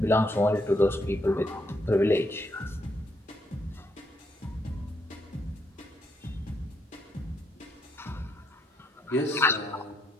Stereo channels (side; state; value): both; normal; correlation 0.76